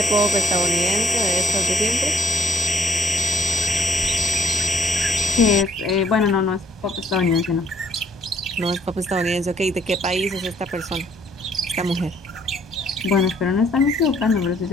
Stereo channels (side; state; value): both; normal; correlation 0.63